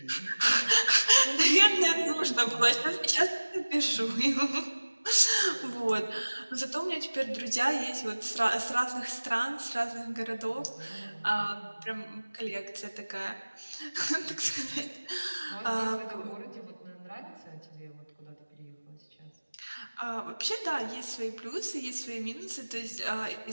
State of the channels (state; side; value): inverted; both; correlation -1.00